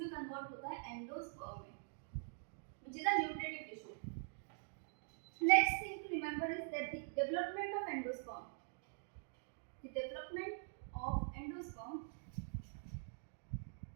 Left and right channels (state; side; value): silent; left; digital silence